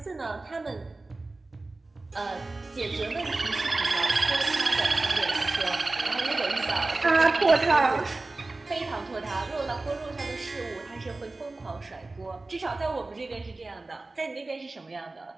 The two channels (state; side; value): quieter; left; 3.2 dB